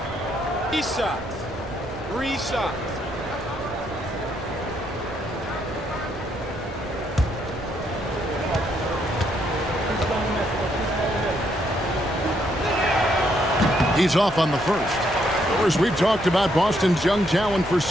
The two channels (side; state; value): right; noise; rumble, 15 dB below the sound